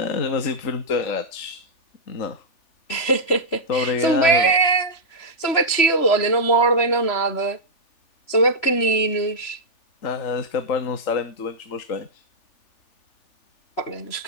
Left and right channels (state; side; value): late; right; 3.0 ms